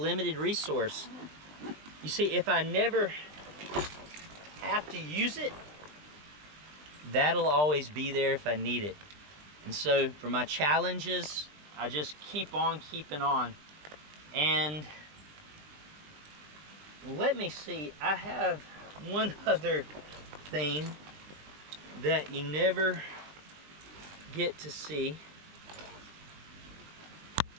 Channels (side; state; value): left; late; 20 ms